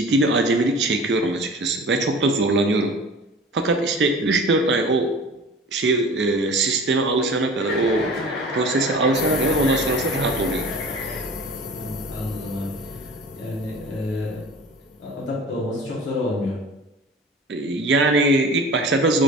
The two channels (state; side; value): normal; both; correlation 0.40